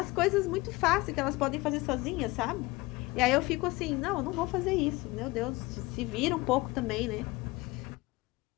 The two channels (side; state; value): right; quieter; 21.9 dB